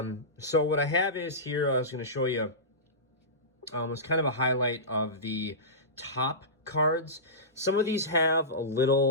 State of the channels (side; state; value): both; normal; correlation -0.20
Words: So what I have is here, I was going to show you, was kind of a highlight of the top cards. Some of these have a